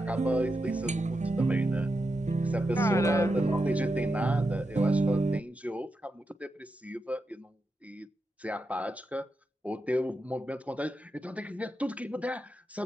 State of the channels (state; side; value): normal; both; correlation 0.87